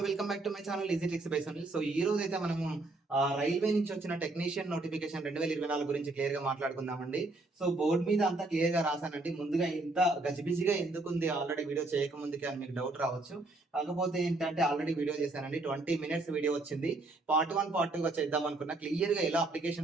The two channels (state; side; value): quieter; left; 3.0 dB